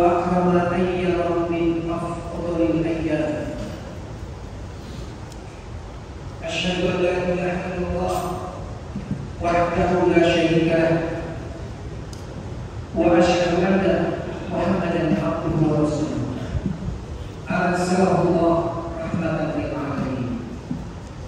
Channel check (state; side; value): identical; both; correlation 1.00